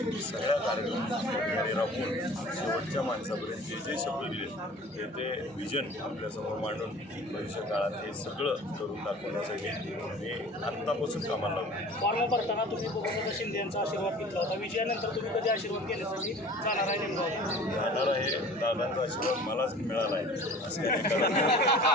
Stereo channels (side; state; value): both; normal; correlation 0.44